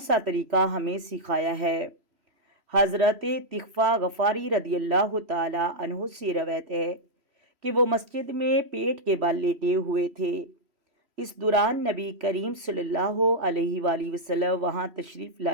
तरीका हमें सिखाया है। हज़रत तिग़फ़ा गफ़ारी रदियल्लाहु ताला अन्हु से रवायत है कि वो मस्जिद में पेट के बल लेटे हुए थे। इस दौरान नबी करीम सल्लल्लाहु अलैहि वसल्लम वहाँ तशरीफ़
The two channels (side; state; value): left; late; 3.0 ms